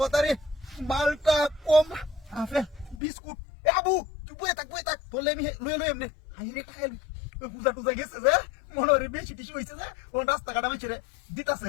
মালটা কম আপেল বিস্কুট এ আবু তুই বই থাক তোলে আমি লই এমনে হাই রে খাইল পূজা টুজা গেছে যে মনে বেশি টিসু হইছে যে ও রাস্তা কাটা মেছেরে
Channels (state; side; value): drops out; right; at 3.0 s